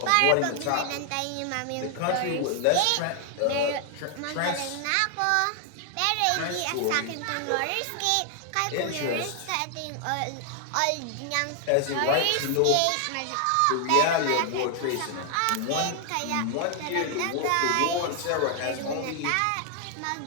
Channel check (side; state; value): both; different; correlation 0.00